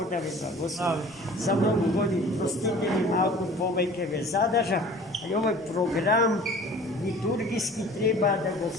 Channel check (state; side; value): normal; both; correlation 0.46